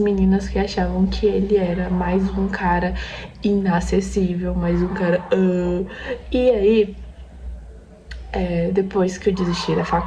que achavam que ele era mais um cara inacessível, mais um cara. E aí, depois que eu desisti da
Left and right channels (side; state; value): both; identical; correlation 1.00